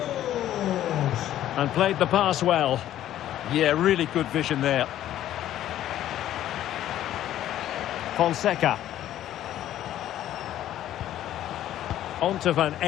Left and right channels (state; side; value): quieter; right; 12.4 dB